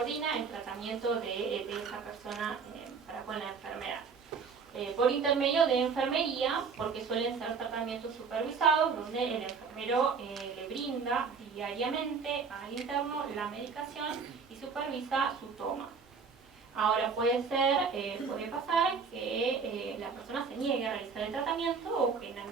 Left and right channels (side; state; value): left; quieter; 5.4 dB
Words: el tratamiento de esa persona para con la enfermedad. Por intermedio de enfermería, porque suelen ser tratamientos supervisados, donde el enfermero le brinda diariamente al interno la medicación y supervisa su toma. Ahora puede pasar que la persona se niegue a realizar el tratamiento, o que en